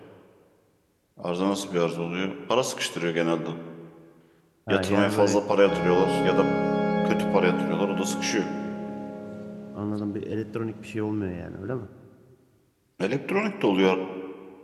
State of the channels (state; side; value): identical; both; correlation 1.00